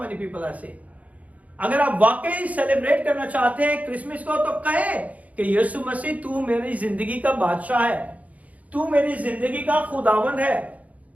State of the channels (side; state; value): left; late; 0.070 ms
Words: people are saying? अगर आप वाकई celebrate करना चाहते हैं Christmas को, तो कहे कि यीशु मसीह तू मेरी जिंदगी का बादशाह है, तू मेरी जिंदगी का खुदावंद है,